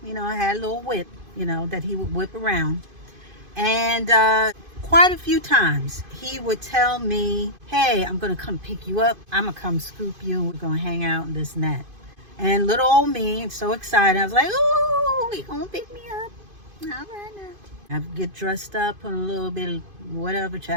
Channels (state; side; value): late; left; 2.5 ms